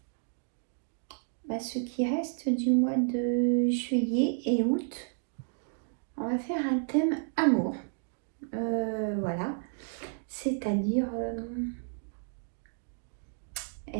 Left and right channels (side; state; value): left; silent; digital silence